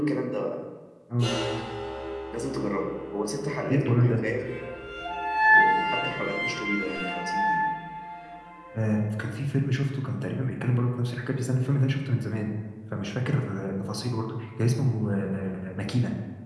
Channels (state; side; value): identical; both; correlation 1.00